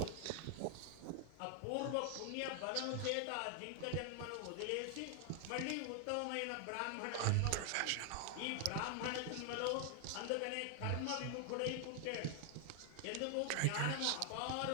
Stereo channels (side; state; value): both; different; correlation 0.00